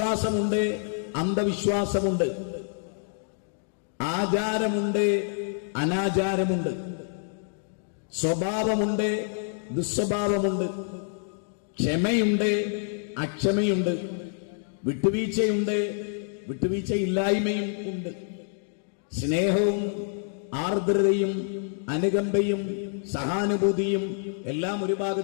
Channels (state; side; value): silent; right; digital silence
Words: അന്ധവിശ്വാസമുണ്ട്, ആചാരമുണ്ട്, അനാചാരമുണ്ട്, സ്വഭാവമുണ്ട്, ദുസ്വഭാവമുണ്ട്, ക്ഷമയുണ്ട്, അക്ഷമയുണ്ട്, വിട്ടുവീഴ്ചയുണ്ട്, വിട്ടുവീഴ്ചയില്ലായ്മയും ഉണ്ട്, സ്നേഹവും ആർദ്രതയും അനുകമ്പയും സഹാനുഭൂതിയും എല്ലാം ഒരു